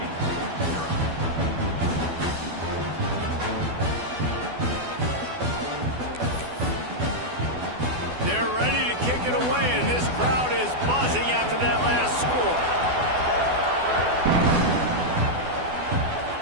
It away, and this crowd is buzzing after that last score.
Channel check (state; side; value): late; left; 12 ms